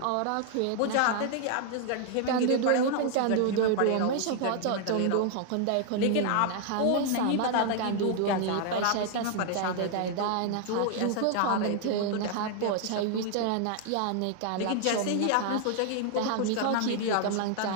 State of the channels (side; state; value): both; different; correlation 0.00